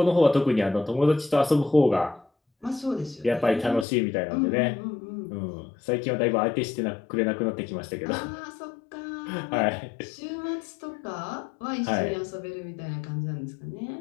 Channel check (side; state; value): right; drops out; at 3.9 s